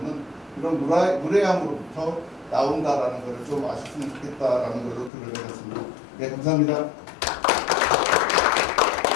이런 무례함으로부터 나온다라는 것을 좀 아셨으면 좋겠다라는 걸로 글을 내렸습니다. 네, 감사합니다.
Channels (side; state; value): right; drops out; at 5.1 s